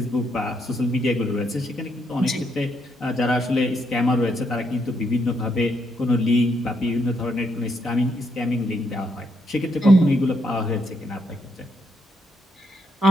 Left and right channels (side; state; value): both; normal; correlation 0.77